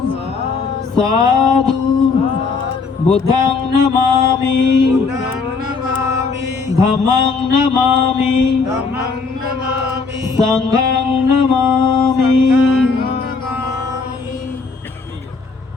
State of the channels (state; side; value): quieter; right; 4.6 dB